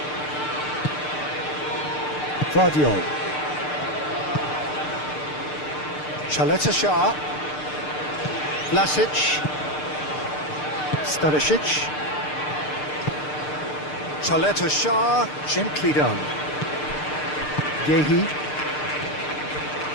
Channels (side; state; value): right; late; 6.7 ms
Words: Vidio. Chaleta Shah. Vlasic. Stanisic. Chaleta Shah. Gently done. Yehi.